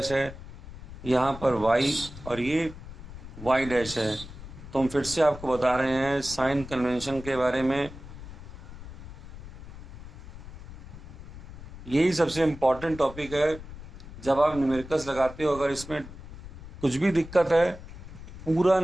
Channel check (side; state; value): left; noise; rumble, 14 dB below the sound